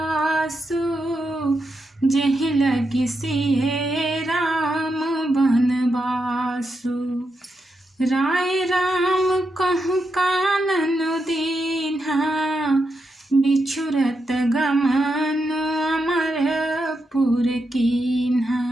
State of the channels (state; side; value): normal; both; correlation 0.85